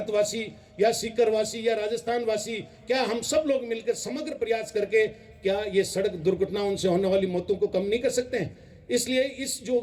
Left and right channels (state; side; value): identical; both; correlation 1.00